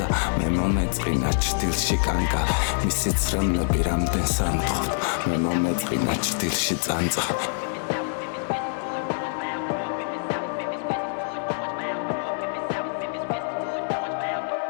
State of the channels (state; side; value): silent; right; 58 dB below the other